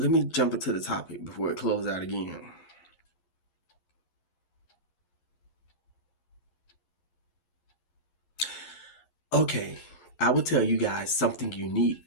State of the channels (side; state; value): right; late; 11 ms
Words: me jump into the topic before it closed out again. Okay, I will tell you guys something